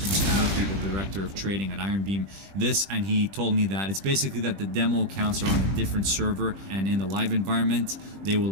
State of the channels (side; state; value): left; late; 20 ms